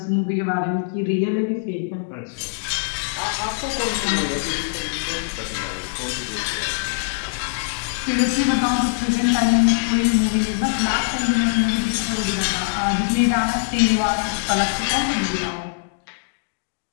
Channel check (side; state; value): right; silent; digital silence